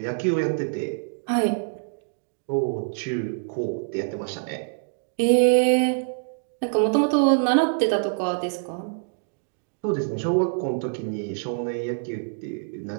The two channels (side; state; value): left; silent; digital silence